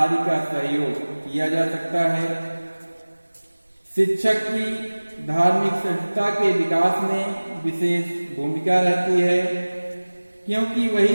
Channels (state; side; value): inverted; both; correlation -1.00